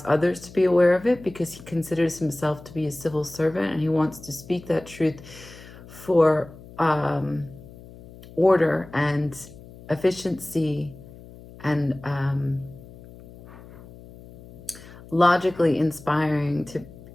others to be aware of it because he considers himself to be a civil servant, and he wants to speak that truth for order and efficiency and logically inspiring to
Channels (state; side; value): noise; left; hum, 19 dB below the sound